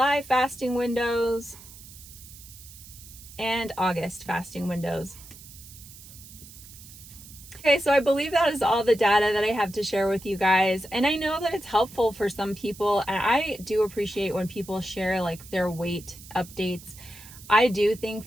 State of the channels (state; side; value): noise; right; hiss, 18 dB below the sound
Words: fasting windows, and August fasting windows. Okay, so I believe that is all the data that I have to share with you guys. And I know that it's helpful for some people, and I do appreciate when people share like their weight updates. I do think